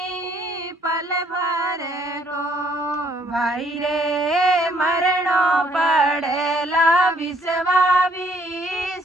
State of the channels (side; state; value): both; normal; correlation 0.65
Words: पल भर को भाई रे मरणो पड़ेला विश्वावी